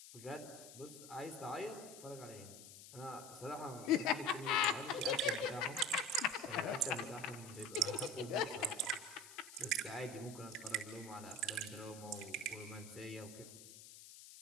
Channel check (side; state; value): left; noise; hiss, 15 dB below the sound